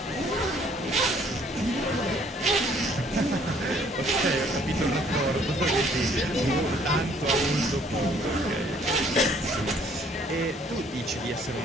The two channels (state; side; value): normal; both; correlation 0.61